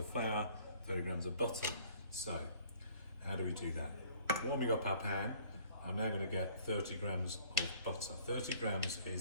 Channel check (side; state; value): both; inverted; correlation -0.56